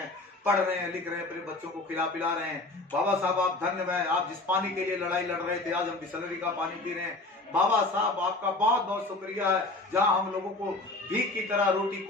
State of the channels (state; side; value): quieter; right; 3.0 dB